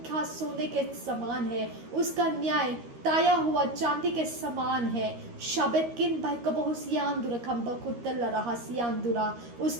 सोने के समान है। उसका न्याय ताया हुआ चांदी के समान है। शबेतकिन बाइकबहुसियांदुरा खंबकुत्तल रहसियांदुरा,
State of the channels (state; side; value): late; left; 13 ms